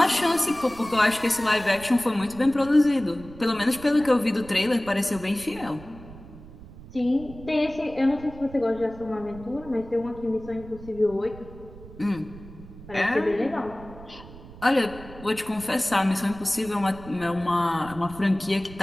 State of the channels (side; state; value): right; noise; rumble, 17 dB below the sound